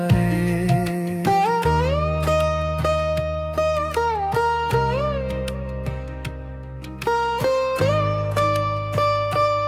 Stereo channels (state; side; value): identical; both; correlation 1.00